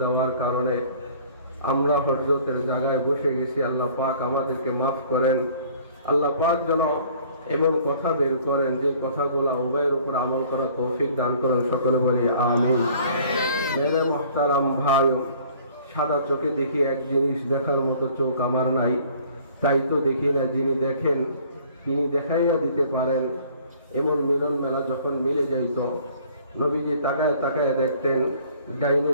দেওয়ার কারণে আমরা হযরতের জায়গায় বসে গেছি। আল্লাহ পাক আমাদেরকে মাফ করেন। আল্লাহ পাক যেন এমন কথা বের করেন যে কথাগুলো উভয়ের উপর আমল করার তৌফিক দান করেন। সকলে বলি আমিন। মেরে মুহতারাম ভাই, সাদা চোখে দেখি এক জিনিস, দেখার মতো চোখ আমার নাই, তাই তো দেখি না। যিনি দেখেন তিনি দেখাইয়া দিতে পারেন। এমন মিলন মেলা যখন মিলে যাইত, নবীজি তাকায় তাকায় দেখতেন ডাইনে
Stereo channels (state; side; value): inverted; both; correlation -0.54